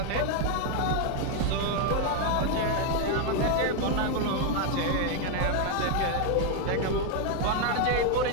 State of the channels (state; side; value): different; both; correlation 0.01